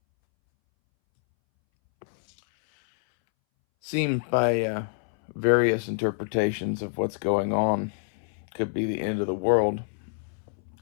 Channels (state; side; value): silent; right; 60 dB below the other